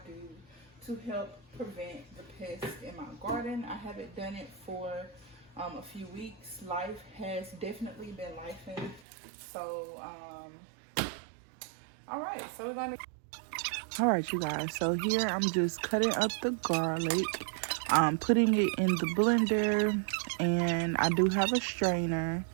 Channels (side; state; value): left; drops out; at 9.0 s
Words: do to help prevent the pests in my garden. I haven't done it for a few weeks. Life has definitely been lifing. So alright, so we're going to Alright you guys, so here I'm just cutting up the garlic, putting it in the blender, and I do have a strainer.